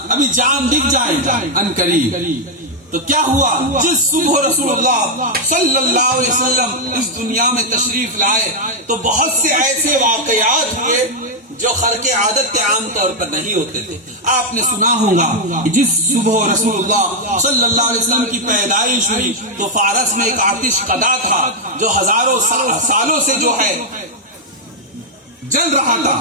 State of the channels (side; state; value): both; normal; correlation -0.02